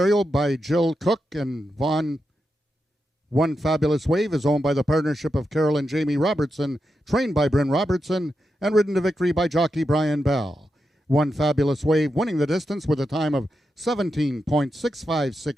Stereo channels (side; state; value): both; normal; correlation 0.87